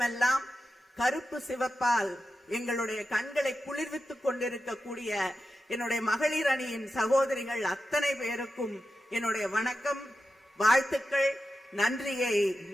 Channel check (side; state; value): both; normal; correlation 0.91